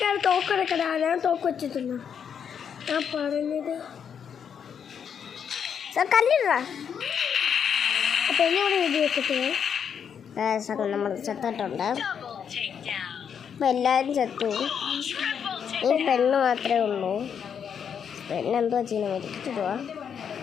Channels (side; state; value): right; quieter; 7.6 dB